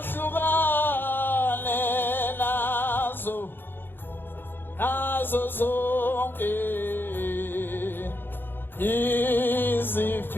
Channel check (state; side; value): late; right; 0.099 ms